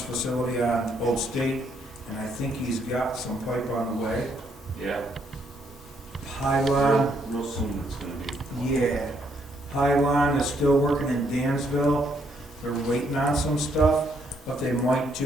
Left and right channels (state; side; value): normal; both; correlation 0.72